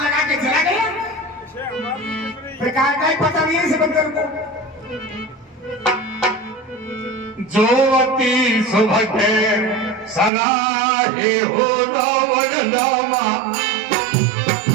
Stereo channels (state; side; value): drops out; left; at 10.3 s